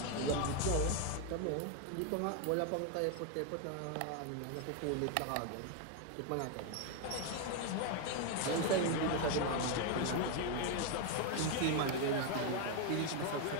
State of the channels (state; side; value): different; both; correlation 0.01